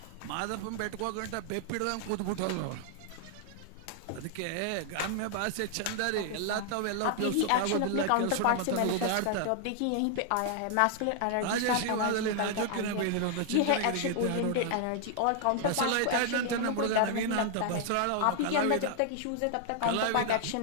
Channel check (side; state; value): both; different; correlation 0.00